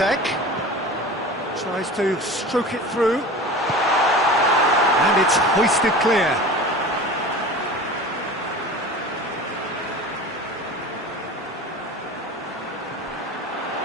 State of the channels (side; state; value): both; normal; correlation 0.36